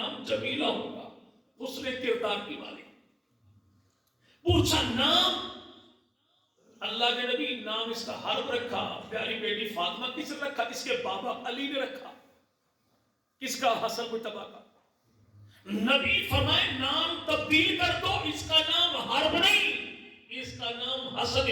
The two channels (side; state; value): both; identical; correlation 1.00